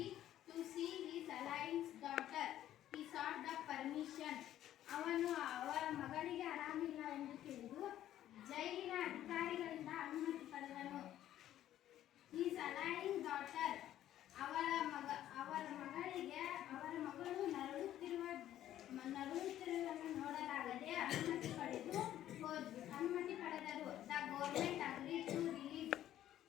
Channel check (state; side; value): quieter; right; 12.3 dB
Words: to see his alliance daughter. He sought the permission. ಅವನು ಅವರ ಮಗಳಿಗೆ ಆರಾಮಿಲ್ಲ ಎಂದು ತಿಳಿದು ಜೈಲಿನ ಅಧಿಕಾರಿಗಳಿಂದ ಅನುಮತಿ ಪಡೆದನು. His alliance daughter, ಅವರ ಮಗಳಿಗೆ ಅವರ ಮಗಳು ನರಳುತ್ತಿರುವುದನ್ನು ನೋಡಲಾಗದೆ ಅನುಮತಿ ಪಡೆದರು. The government agreed to release.